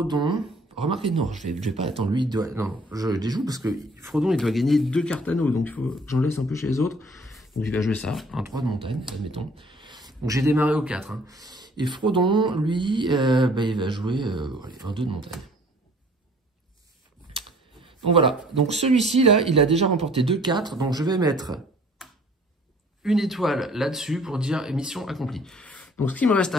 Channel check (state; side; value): normal; both; correlation 0.55